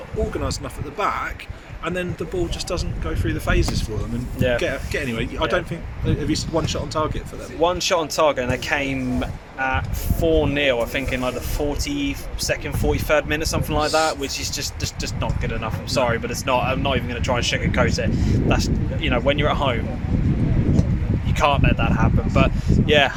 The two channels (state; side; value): identical; both; correlation 1.00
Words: organised enough at the back, and then the ball just doesn't go through the phases for them and get anywhere. I don't think. Have you one shot on target for them? One shot on target, and they came at 4-0. I think in like the 42nd, 43rd minute, something like that, which is just not good enough. I'm sorry, but it's not. I'm not even going to try and sugarcoat it. That's when you're at home, you can't let that happen. But yeah,